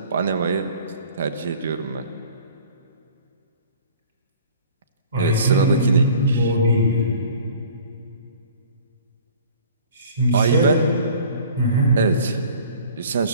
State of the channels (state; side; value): inverted; both; correlation -0.49